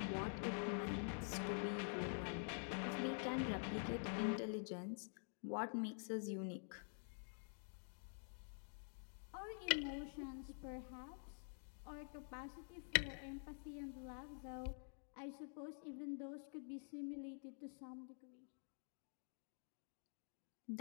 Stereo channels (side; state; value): right; silent; digital silence